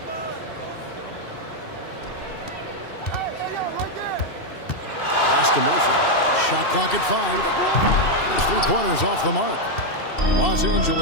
Pass to Murphy. Shot clock at 5. There's 3 pointers off the mark. Los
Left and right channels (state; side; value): late; right; 2.7 ms